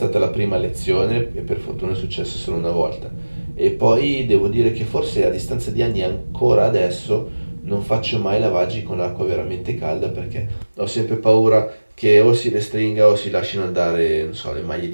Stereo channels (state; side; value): inverted; both; correlation -1.00